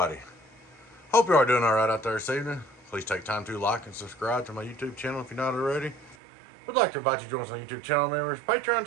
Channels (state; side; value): drops out; left; at 6.2 s